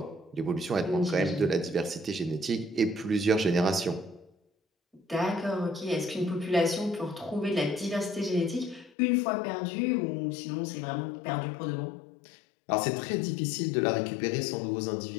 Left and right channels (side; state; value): right; drops out; at 8.9 s